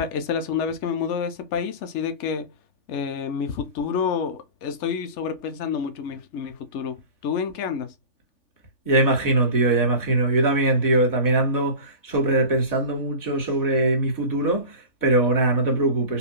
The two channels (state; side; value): late; right; 3.4 ms